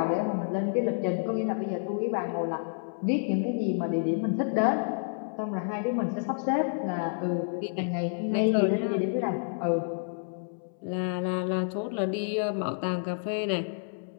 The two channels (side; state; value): right; silent; 58 dB below the other